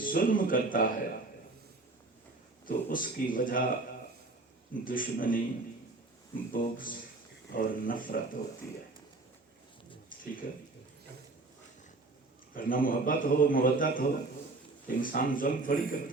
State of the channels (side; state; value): left; quieter; 3.2 dB